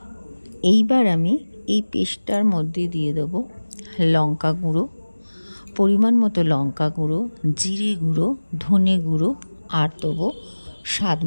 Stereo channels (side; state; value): both; inverted; correlation -1.00